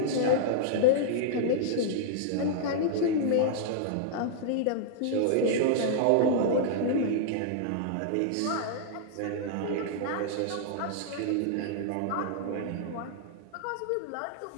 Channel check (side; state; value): both; different; correlation -0.01